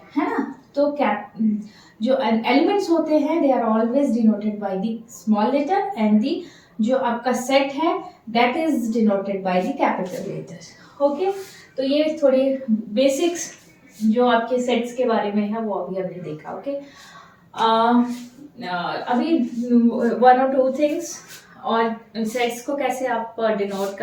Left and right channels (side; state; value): both; identical; correlation 1.00